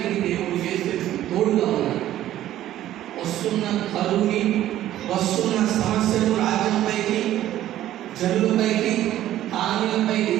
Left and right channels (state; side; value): quieter; left; 13.1 dB